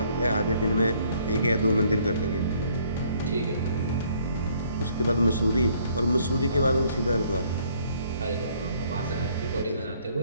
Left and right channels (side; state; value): both; inverted; correlation -0.63